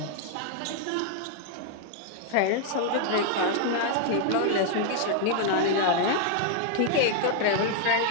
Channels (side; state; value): both; different; correlation 0.00